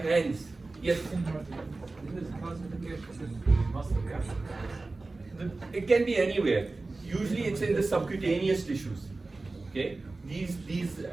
hands. Yes? It can be anywhere. Usually it's in the subcutaneous tissues. Okay? These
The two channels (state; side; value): quieter; left; 3.4 dB